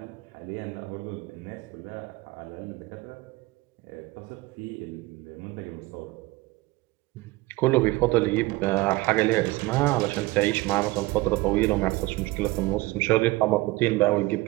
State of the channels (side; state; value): left; quieter; 20.9 dB